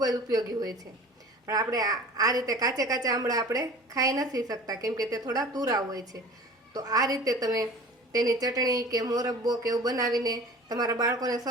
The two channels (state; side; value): normal; both; correlation 0.42